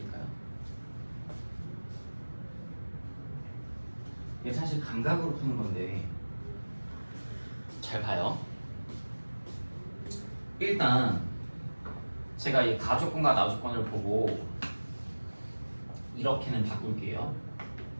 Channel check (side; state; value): both; inverted; correlation -1.00